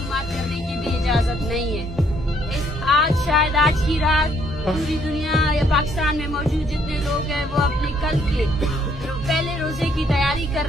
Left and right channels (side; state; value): both; normal; correlation 0.68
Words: करने की भी इजाजत नहीं है। शायद आज की रात पूरी दुनिया या पाकिस्तान में मौजूद जितने लोग हैं वो अपने कल के पहले रोजे की तैयारी कर